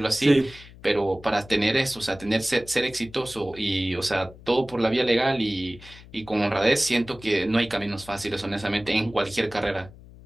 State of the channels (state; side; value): noise; left; hum, 20 dB below the sound